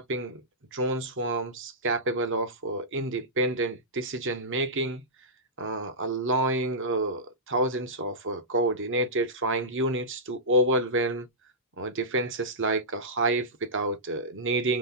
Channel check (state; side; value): normal; both; correlation -0.15